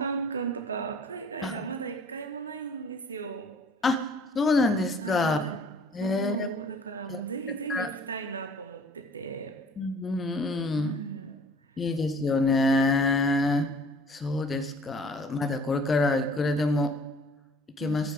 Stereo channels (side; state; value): both; normal; correlation 0.52